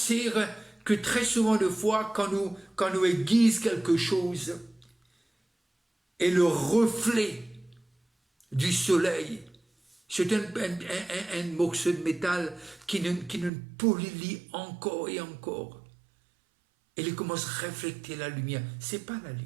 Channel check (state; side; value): drops out; left; at 13.5 s